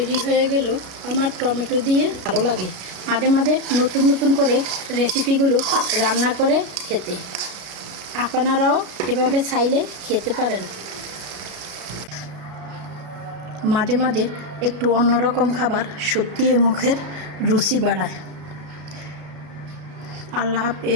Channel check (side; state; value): left; late; 33 ms